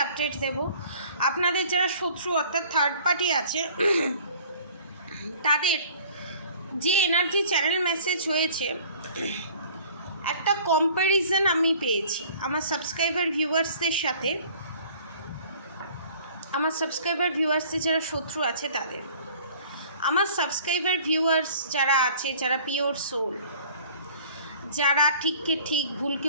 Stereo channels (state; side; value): inverted; both; correlation -0.50